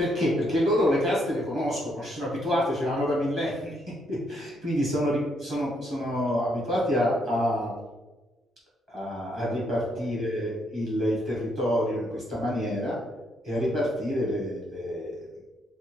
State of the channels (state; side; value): normal; both; correlation 0.74